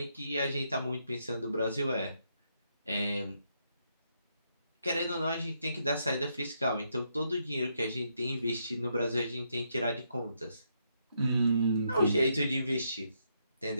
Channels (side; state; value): both; inverted; correlation -0.78